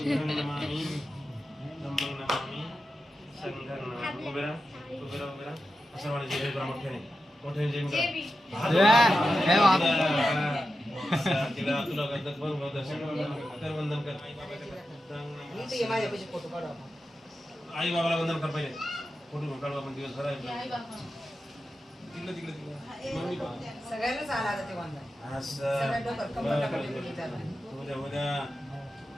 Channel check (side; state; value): both; normal; correlation 0.91